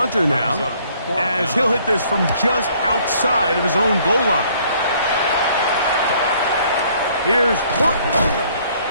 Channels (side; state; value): both; inverted; correlation -0.61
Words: now, as he'll hit this from just outside of his own goal line. Here's Horton.